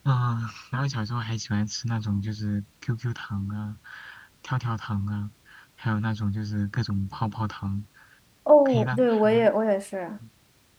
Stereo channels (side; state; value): both; identical; correlation 1.00